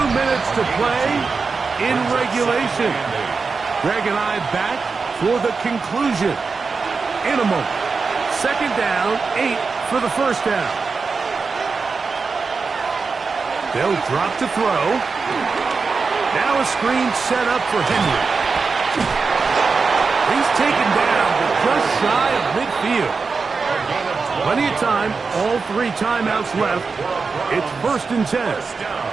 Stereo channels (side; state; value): left; quieter; 4.7 dB